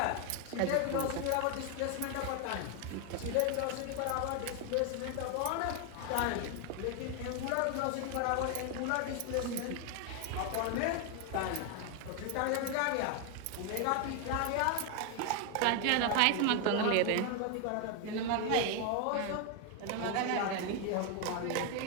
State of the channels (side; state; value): both; different; correlation 0.01